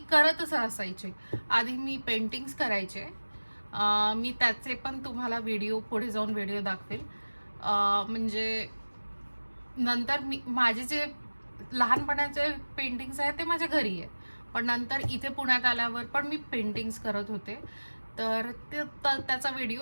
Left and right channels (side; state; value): both; inverted; correlation -1.00